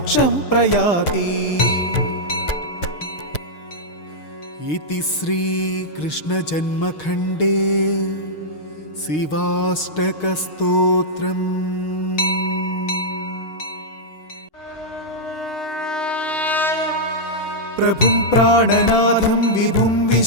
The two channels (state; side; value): late; right; 6.5 ms